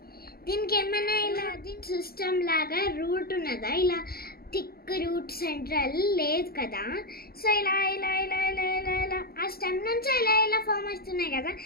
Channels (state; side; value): late; right; 0.44 ms